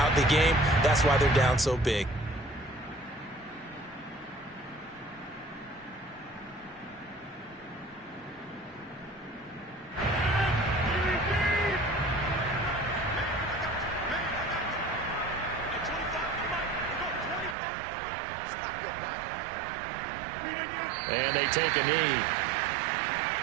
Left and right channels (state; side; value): drops out; left; at 17.6 s